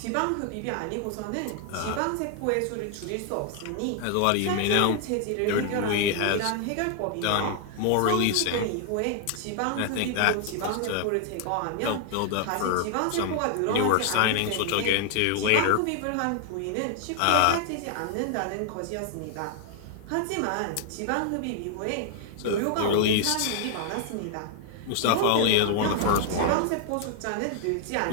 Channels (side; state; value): both; different; correlation 0.00